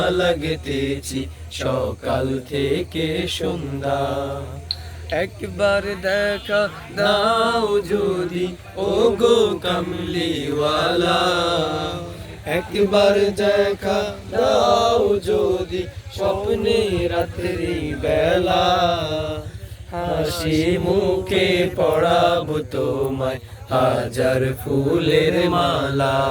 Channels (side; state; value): both; identical; correlation 1.00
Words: লাগতেছি সকাল থেকে সন্ধ্যা। একবার দেখা দাও যদি ও গো কামলিওয়ালা, একবার দেখা দাও যদি স্বপ্নে রাত্রি বেলা। হাসি মুখে পড়াবো তোমায় হাজার ফুলের মালা।